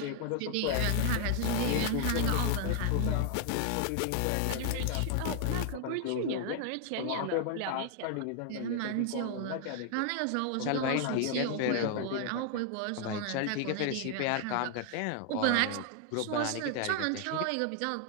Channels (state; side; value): different; both; correlation 0.00